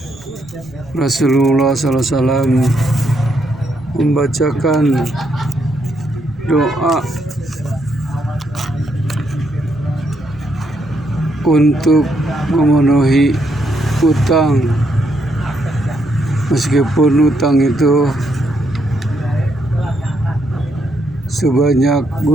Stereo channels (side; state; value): right; noise; rumble, 24 dB below the sound